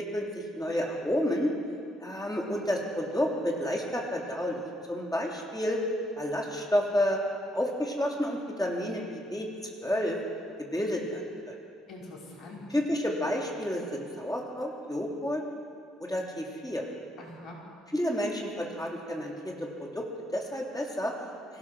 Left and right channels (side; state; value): both; normal; correlation 0.76